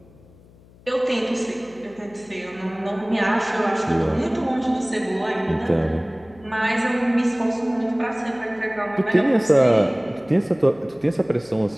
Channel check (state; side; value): noise; left; hum, 26 dB below the sound